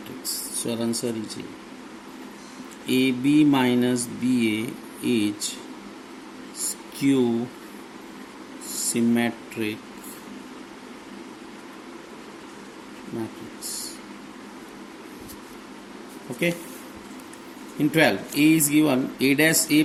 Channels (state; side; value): identical; both; correlation 1.00